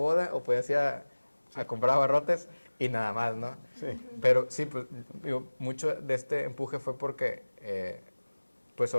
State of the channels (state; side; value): inverted; both; correlation -1.00